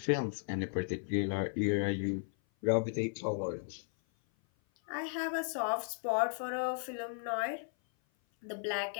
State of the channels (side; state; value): right; silent; 54 dB below the other